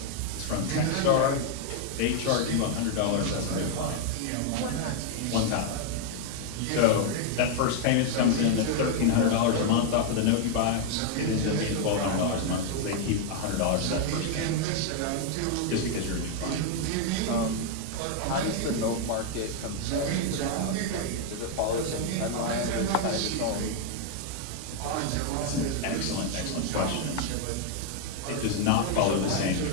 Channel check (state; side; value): different; both; correlation 0.00